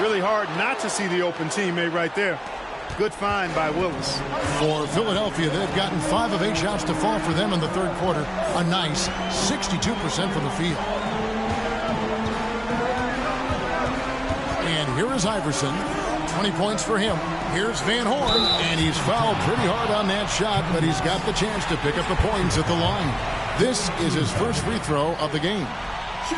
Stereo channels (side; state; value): both; identical; correlation 1.00